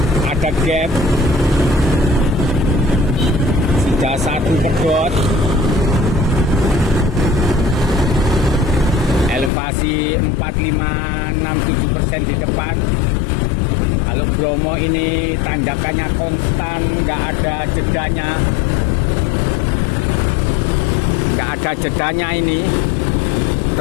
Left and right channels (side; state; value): right; drops out; at 9.5 s